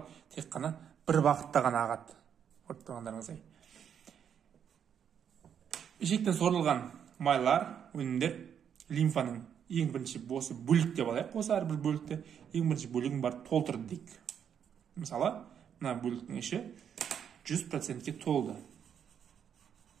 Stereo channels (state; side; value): quieter; left; 8.3 dB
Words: тек қана бір бағытта ғана ағады. Көріп тұрғандарыңыздай. Ішектен сорылған майлар, өнімдер лимфаның ең бірінші осы бөлік деп алайық. Осы әрбір бөлікті ең бірінші бөлігін барып толтырды дейік. Мысалы, мына бөліктің іші 100%-ке толды.